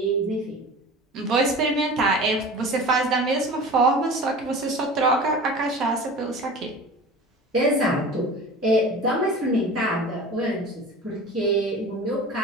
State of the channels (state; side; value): normal; both; correlation 0.37